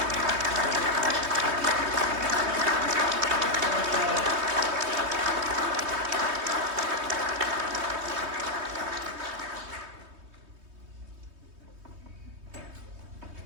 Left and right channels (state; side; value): late; left; 3.2 ms